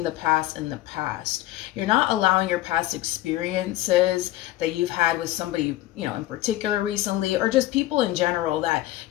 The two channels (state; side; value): quieter; right; 15.8 dB